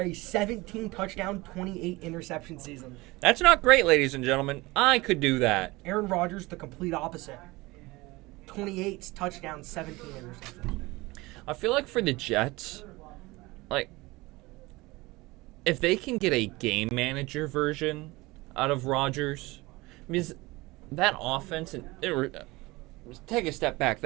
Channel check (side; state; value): left; quieter; 21.9 dB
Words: 17 touchdown, 28 interception season. That's not great, ladies and gentlemen. I could do that. Aaron Rodgers, the complete opposite. 28 touchdowns, 17 interceptions. I feel like for the Jets, like, if they can get a game manager version out of Rodgers, because that offense, take a step back,